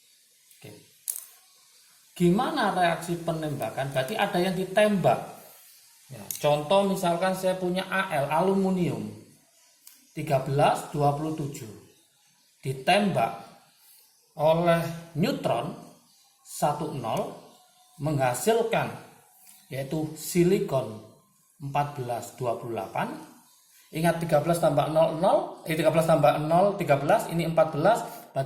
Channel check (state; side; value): identical; both; correlation 1.00